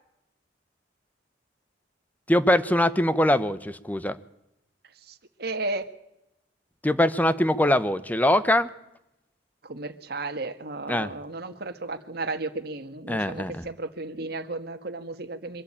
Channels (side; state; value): both; normal; correlation 0.71